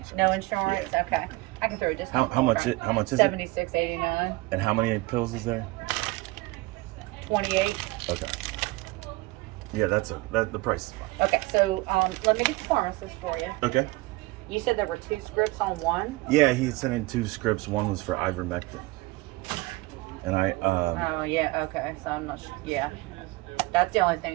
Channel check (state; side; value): quieter; left; 22.0 dB